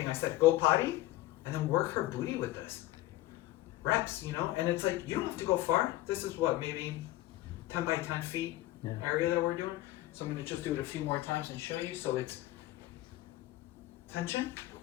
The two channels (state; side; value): quieter; right; 16.2 dB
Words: I said, go potty, and then work her booty with this. Reps, you know? And it's like, you don't have to go far. This is what, maybe 10 by 10 feet area that we're doing. So I'm gonna just do it a few more times and show you. So it's tension.